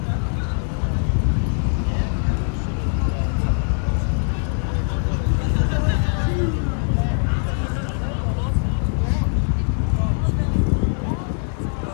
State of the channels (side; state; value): right; silent; 59 dB below the other